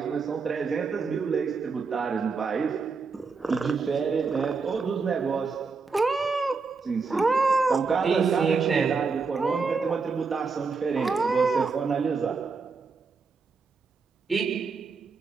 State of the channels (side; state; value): left; quieter; 4.8 dB